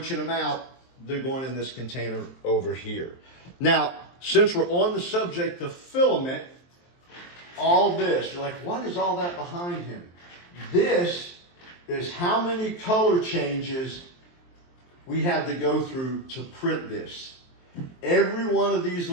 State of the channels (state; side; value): late; right; 23 ms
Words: them out, they're going in this container over here. Now, since we're on the subject of filament, all this, you're like, what is all that behind him? This is how many color changes we had to go through to print this. Every one of these